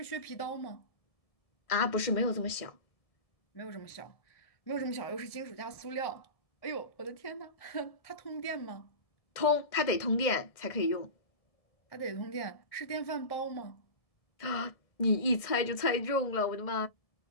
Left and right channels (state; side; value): late; right; 1.7 ms